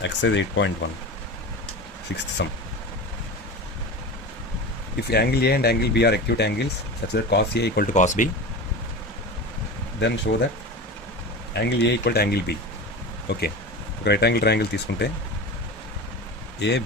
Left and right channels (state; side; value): normal; both; correlation 0.29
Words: 8.1, sixth sum. If angle A and angle B are acute angles such that cos A equal to cos B, then show that angle A equal to angle B. Okay, ఒక రైట్ యాంగిల్ ట్రయాంగిల్ తీసుకుంటే